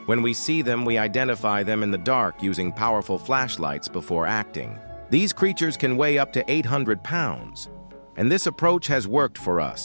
When we see them, we identify them in the dark using powerful flashlights before acting. These creatures can weigh up to 800 pounds, and this approach has worked for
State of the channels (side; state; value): both; inverted; correlation -1.00